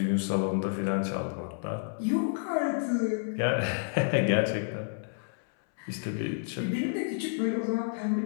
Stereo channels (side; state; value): right; silent; 58 dB below the other